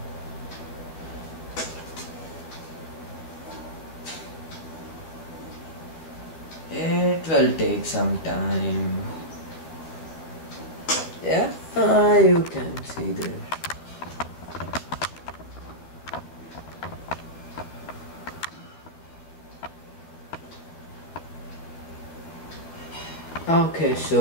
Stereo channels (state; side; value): late; right; 12 ms